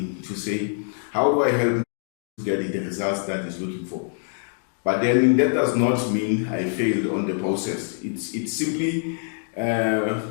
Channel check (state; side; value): silent; right; 62 dB below the other